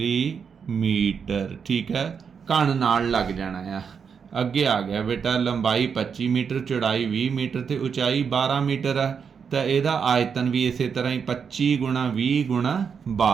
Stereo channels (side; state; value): left; quieter; 6.5 dB